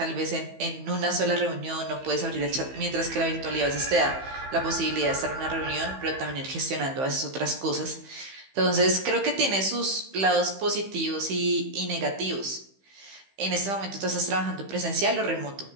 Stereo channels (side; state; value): left; late; 15 ms